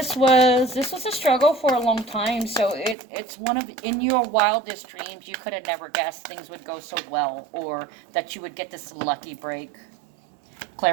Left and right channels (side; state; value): left; drops out; at 3.0 s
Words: was a struggle for a long time. So it's one of, in your wildest dreams, you could have never guessed things would go so well, or that you would get this lucky break.